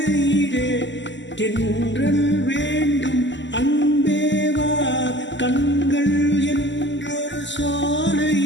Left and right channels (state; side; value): late; right; 0.53 ms